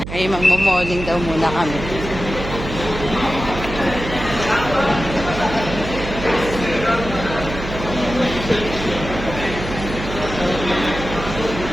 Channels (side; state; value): right; noise; hum, 8 dB below the sound